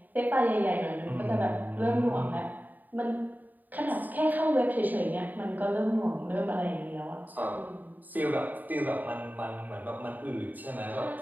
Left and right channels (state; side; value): late; left; 0.086 ms